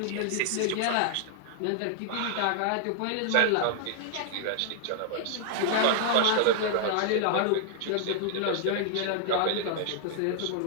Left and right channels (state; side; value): different; both; correlation -0.01